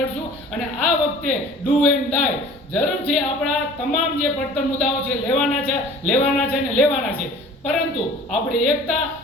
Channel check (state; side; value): normal; both; correlation 0.46